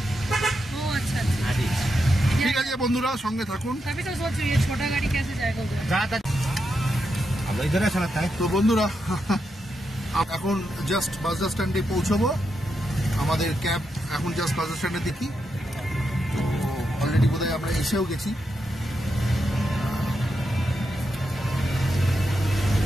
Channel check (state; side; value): normal; both; correlation 0.85